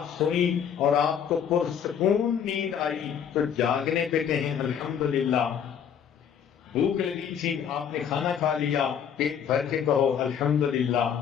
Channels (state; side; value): quieter; right; 8.2 dB